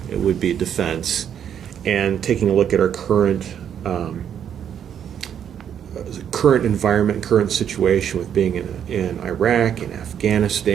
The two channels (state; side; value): quieter; left; 8.9 dB